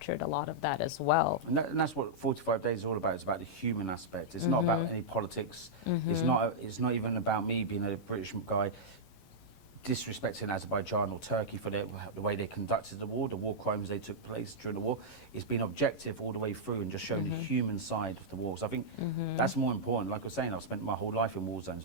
a lot of that as well. And that's what 45 Days is all about. It's about the human aspect. It's not about any politics. It's not even about me being a British guy disrespecting Azerbaijan or Turkey for the way they conducted the war crimes they took place during the war. It's been objective all the way through and just showing the human side of the war. So I think that's more important. Like I was saying, I've spent my whole life in war zones,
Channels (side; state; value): right; late; 13 ms